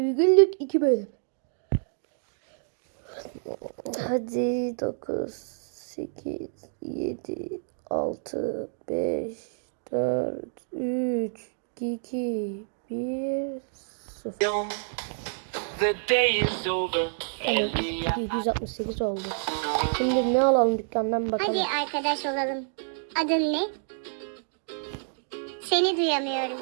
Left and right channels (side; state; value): left; silent; digital silence